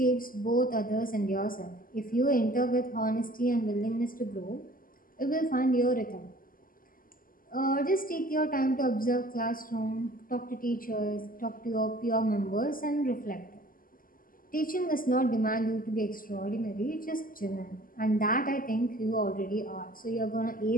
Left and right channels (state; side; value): late; right; 0.41 ms